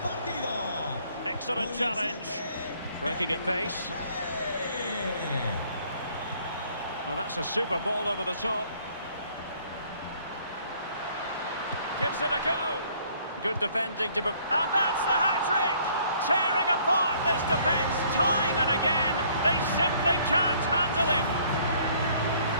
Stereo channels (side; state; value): both; inverted; correlation -0.60